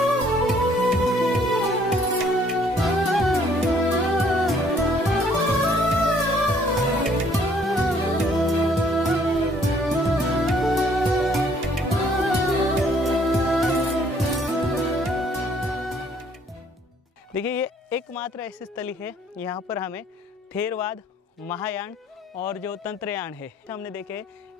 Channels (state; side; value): normal; both; correlation 0.62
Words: देखिए, ये एकमात्र ऐसी स्थली है यहाँ पर हमें थेरवाद, महायान और जो तंत्रयान है हमने देखे